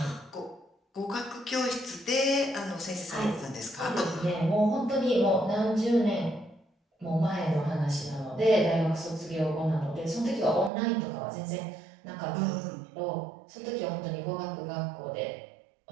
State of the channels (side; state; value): left; drops out; at 10.7 s